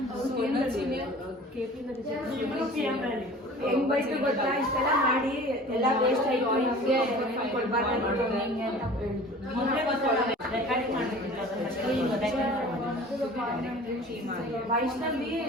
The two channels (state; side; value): normal; both; correlation 0.44